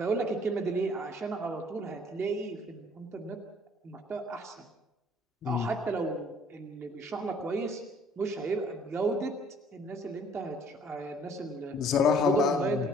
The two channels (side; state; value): both; normal; correlation 0.57